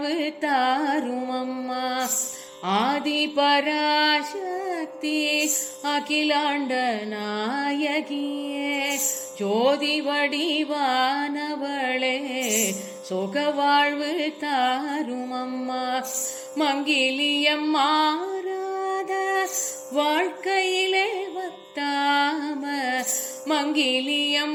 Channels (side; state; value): both; identical; correlation 1.00